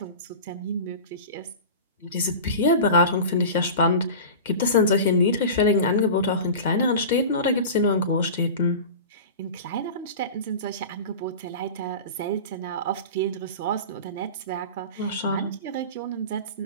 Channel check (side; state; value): both; inverted; correlation -0.32